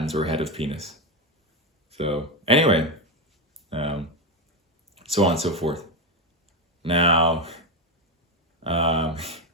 or head of penis. So anyway, so on and so forth. Now,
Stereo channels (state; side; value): normal; both; correlation 0.10